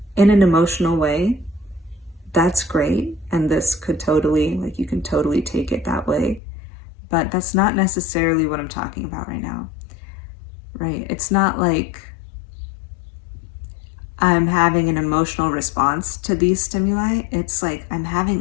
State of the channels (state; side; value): drops out; right; at 6.4 s